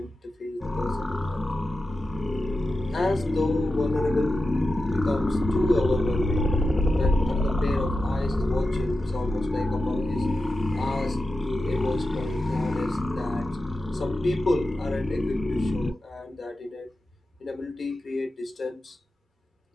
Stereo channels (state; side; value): normal; both; correlation 0.92